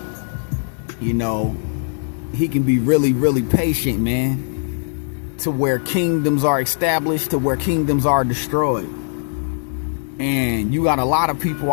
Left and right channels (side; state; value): right; silent; 66 dB below the other